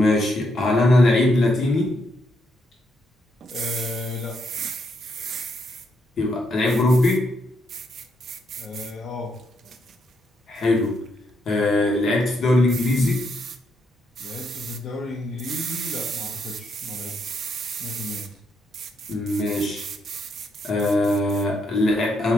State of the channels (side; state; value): both; normal; correlation 0.77